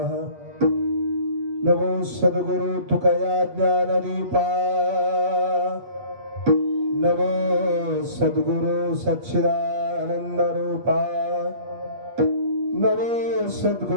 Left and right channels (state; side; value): late; left; 8.3 ms